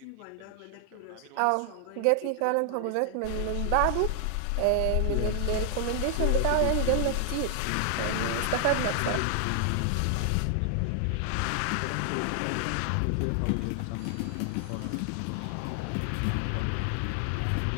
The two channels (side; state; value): both; different; correlation 0.00